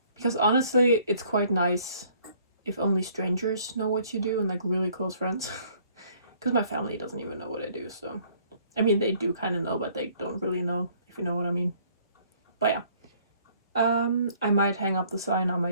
Because honestly, it's quite nice if only strangers know what you do and like really close friends. Because my family doesn't even know what I do, so I mean they do kind of know, but they don't really know, if you know what I mean. But yeah, I might hang up the sign, I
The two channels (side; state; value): both; inverted; correlation -0.60